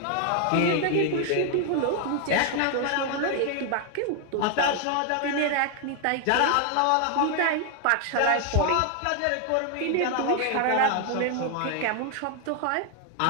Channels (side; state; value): both; different; correlation 0.00